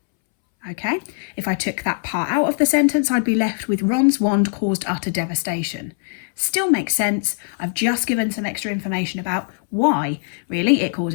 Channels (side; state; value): right; silent; 65 dB below the other